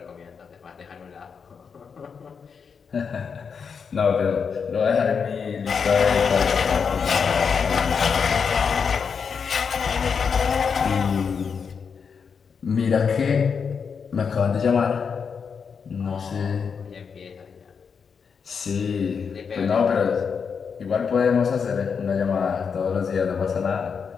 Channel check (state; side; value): quieter; right; 6.1 dB